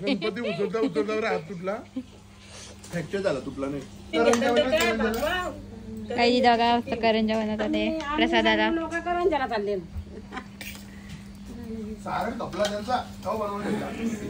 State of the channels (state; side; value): identical; both; correlation 1.00